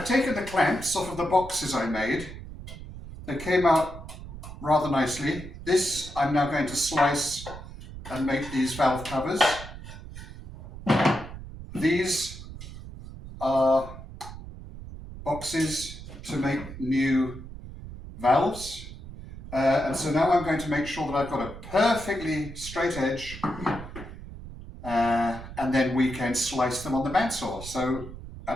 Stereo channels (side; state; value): right; noise; rumble, 12 dB below the sound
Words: taken the clamps off of the boxes I made. They came out rather nicely. This I'm now going to slice and make these valve covers. These are boxes to make new valves. And so now I'm going to make sure that I've got a perfectly straight edge, and then we can slice them on the bandsaw. So